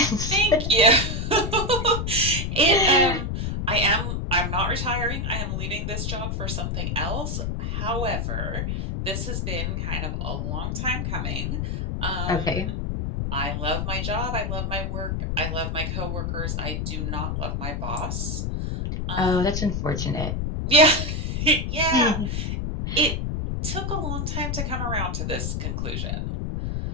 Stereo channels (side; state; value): left; noise; rumble, 1 dB below the sound